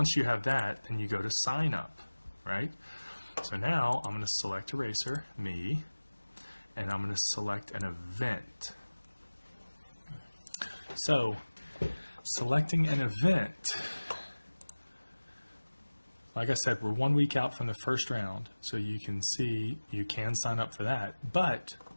you have that, then you go to sign up, right? So now I'm going to select a racer, me, and I'm going to select an event. So selecting an event, like I said, we're 1 week out from the first round, so you can see you can sign up for that. But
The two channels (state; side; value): inverted; both; correlation -1.00